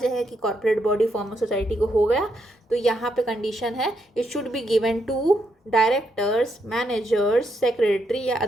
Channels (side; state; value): both; normal; correlation 0.79